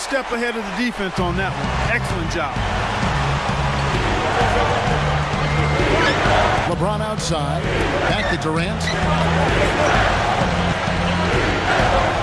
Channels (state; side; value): identical; both; correlation 1.00